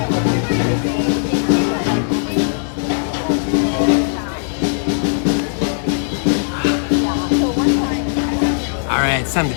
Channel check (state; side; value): silent; right; digital silence